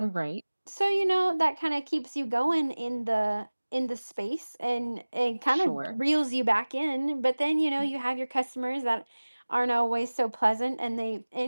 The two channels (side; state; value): both; inverted; correlation -1.00